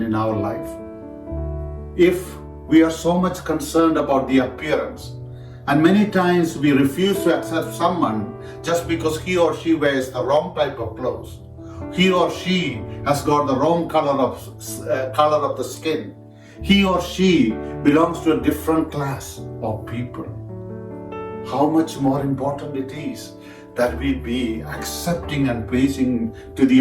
our life. If we are so much concerned about the appearance, and many times we refuse to accept someone just because he or she wears the wrong type of clothes, he or she has got the wrong color of the skin, he or she belongs to a different class of people. How much more important it is that we be accepting and pleasing to the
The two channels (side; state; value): both; identical; correlation 1.00